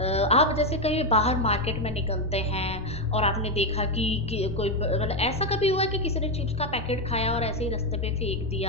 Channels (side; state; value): both; normal; correlation 0.07